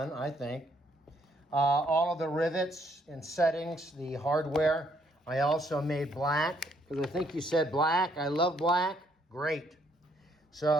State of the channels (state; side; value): normal; both; correlation 0.70